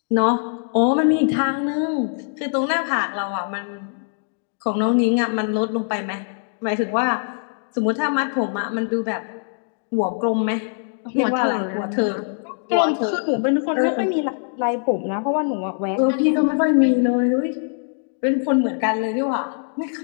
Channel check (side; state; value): right; silent; digital silence